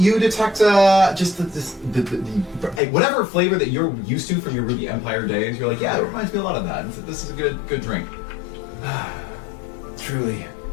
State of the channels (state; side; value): drops out; right; at 2.8 s